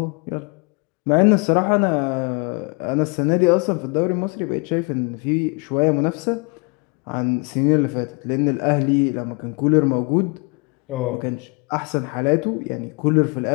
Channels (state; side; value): quieter; right; 31.8 dB